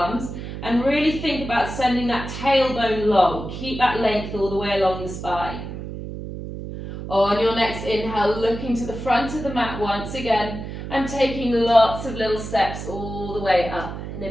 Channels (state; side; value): noise; right; hum, 8 dB below the sound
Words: and really think about sending that tailbone long. Keep that length all the way along the spine. On your next inhale, looking to the front of the mat once again, and taking lots of little steps all the way up and